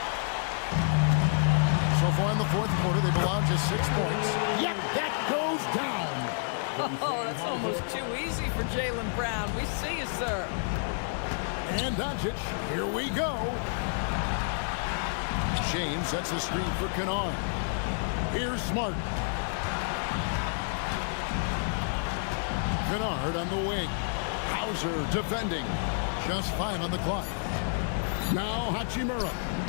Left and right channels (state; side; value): silent; right; digital silence